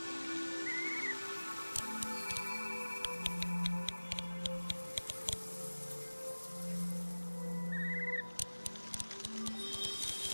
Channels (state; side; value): inverted; both; correlation -1.00